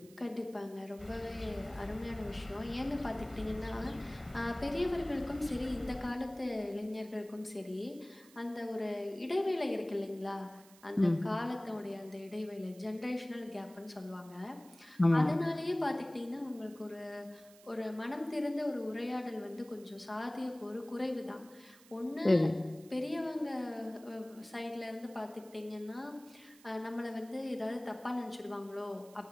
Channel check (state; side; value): noise; right; hiss, 23 dB below the sound